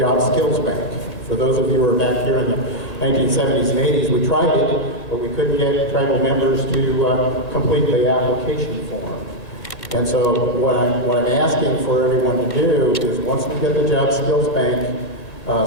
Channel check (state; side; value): late; right; 1.8 ms